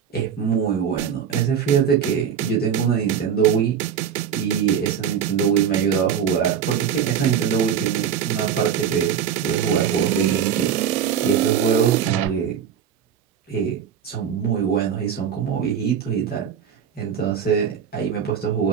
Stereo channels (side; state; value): left; quieter; 8.1 dB